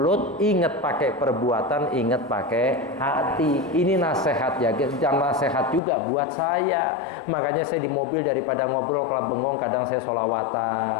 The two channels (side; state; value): right; drops out; at 5.8 s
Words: ingat pakai perbuatan, ingat pakai hati. Ini nasihat ya, jangan nasihat juga buat saya. Makanya saya di mobil daripada ngobrol kalau bengong, kadang saya